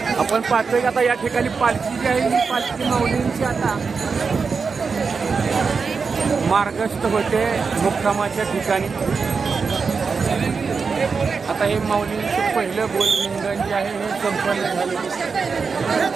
पाहतोय की आता या ठिकाणी पालखी जी आहे ही पालखी माऊलींची आता मार्गस्थ होते मुक्कामाच्या ठिकाणी. आता हे माऊलींचं पहिलं बोलरिंगण जे आहे हे संपन्न झाले.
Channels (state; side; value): quieter; left; 5.1 dB